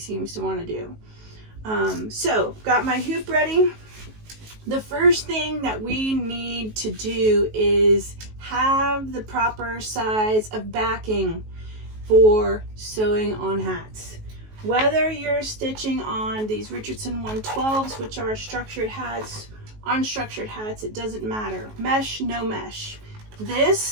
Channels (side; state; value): left; late; 19 ms